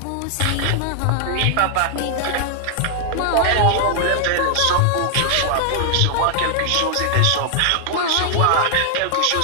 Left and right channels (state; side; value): different; both; correlation 0.00